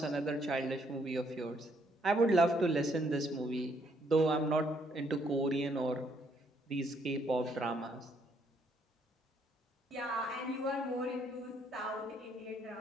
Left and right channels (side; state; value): both; normal; correlation 0.70